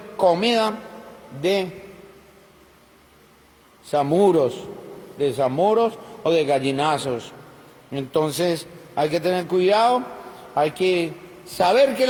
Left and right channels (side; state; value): both; identical; correlation 1.00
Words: comida de zamuros o de gallinazos. Entonces hay que tener cuidado, hay que saber que